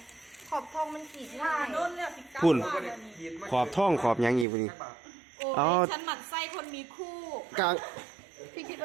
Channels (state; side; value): drops out; left; at 4.5 s